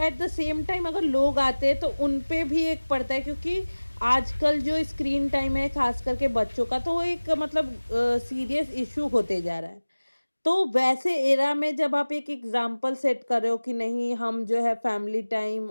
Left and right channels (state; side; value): inverted; both; correlation -1.00